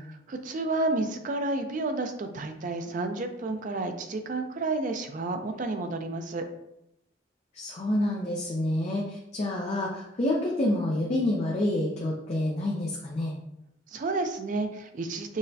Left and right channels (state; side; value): normal; both; correlation 0.50